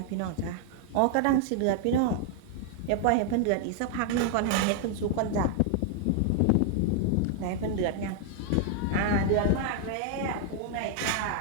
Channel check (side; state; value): both; different; correlation 0.00